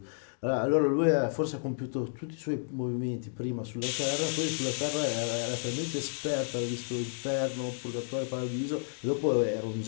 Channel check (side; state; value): right; silent; digital silence